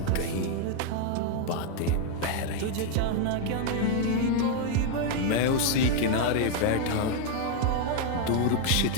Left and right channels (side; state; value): both; different; correlation 0.00